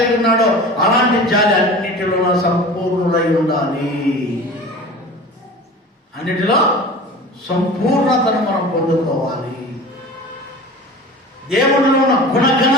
ఉన్నాడో అలాంటి జాలి అన్నిటిలో సంపూర్ణులై ఉండాలి. అన్నిటిలో సంపూర్ణతను మనం పొందుకోవాలి. దేవుడిలో ఉన్న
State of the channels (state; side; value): normal; both; correlation 0.37